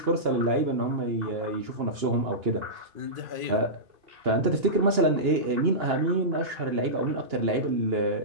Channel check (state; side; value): late; left; 2.9 ms